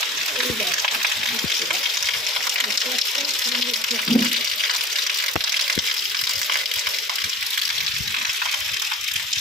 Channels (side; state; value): both; normal; correlation 0.39